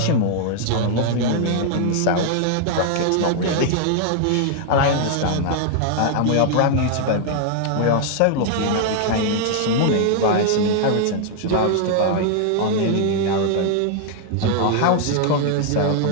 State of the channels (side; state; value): both; different; correlation 0.00